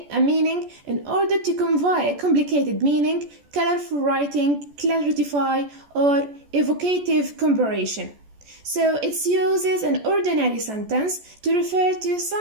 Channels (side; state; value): left; late; 14 ms